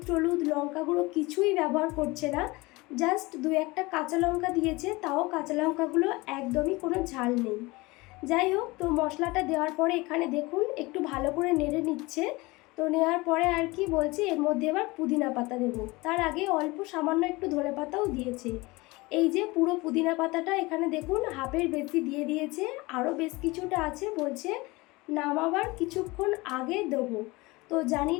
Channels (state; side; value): quieter; right; 22.9 dB